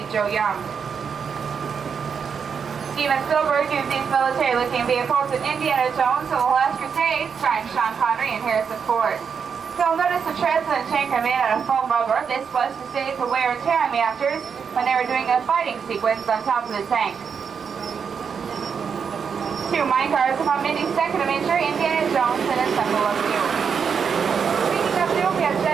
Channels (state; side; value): quieter; left; 6.5 dB